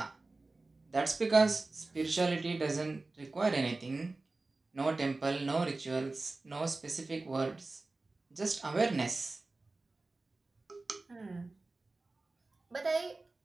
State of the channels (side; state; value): left; quieter; 3.3 dB